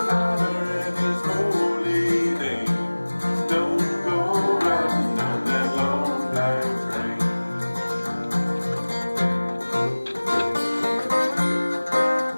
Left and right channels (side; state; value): both; inverted; correlation -1.00